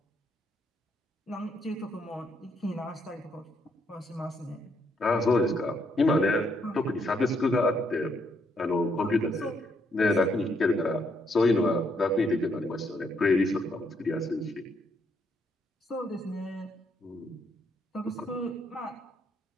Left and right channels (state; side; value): normal; both; correlation 0.74